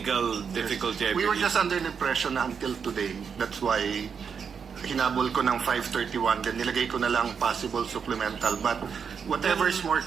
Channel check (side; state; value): left; quieter; 6.5 dB